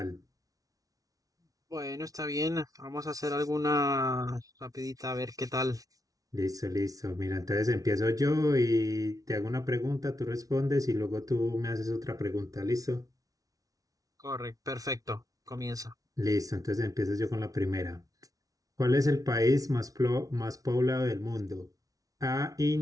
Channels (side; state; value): left; late; 0.18 ms